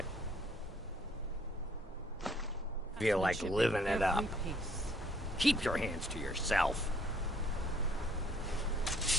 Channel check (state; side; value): normal; both; correlation 0.63